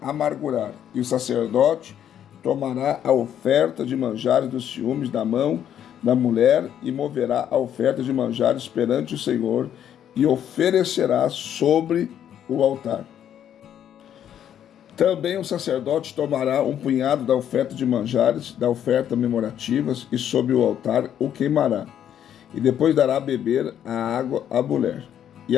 E o sacerdote tomará a oferta de manjares dos ciúmes da mão da mulher e moverá a oferta de manjares perante o Senhor e oferecerá sobre o altar. Também o sacerdote tomará um punhado da oferta de manjares, da oferta memorativas, e sobre o altar o queimará. E depois dará a beber a água à mulher. E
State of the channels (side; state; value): right; quieter; 9.9 dB